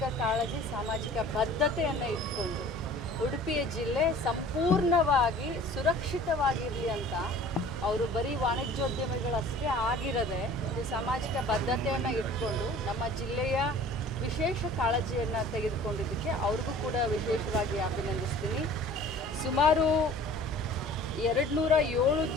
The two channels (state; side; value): normal; both; correlation 0.47